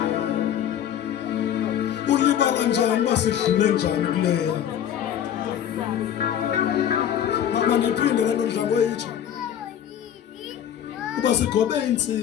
Ulibala njani masidlule njani kuleya. Mama niphinde lento ndlango yethu. Uba sigobe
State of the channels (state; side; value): quieter; right; 9.9 dB